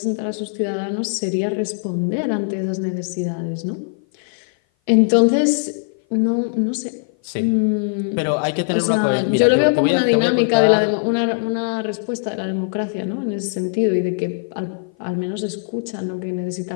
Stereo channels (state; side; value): silent; right; 56 dB below the other